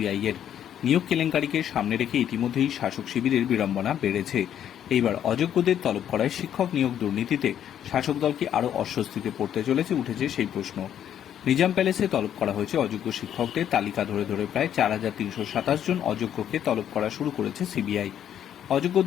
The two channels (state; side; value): quieter; right; 10.0 dB